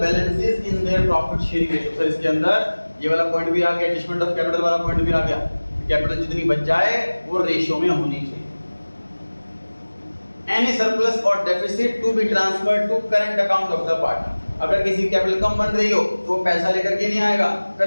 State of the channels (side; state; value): both; inverted; correlation -1.00